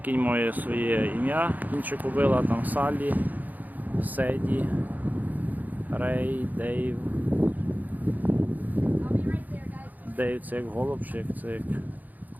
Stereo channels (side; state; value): left; late; 0.082 ms